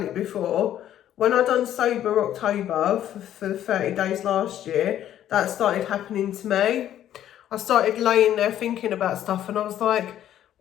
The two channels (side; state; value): right; quieter; 11.4 dB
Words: it before, when I done Sober October for the 30 days last year, that started happening to me. I started laying there thinking about stuff, and I was like,